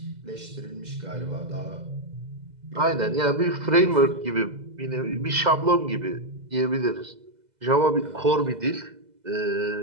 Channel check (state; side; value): late; left; 2.0 ms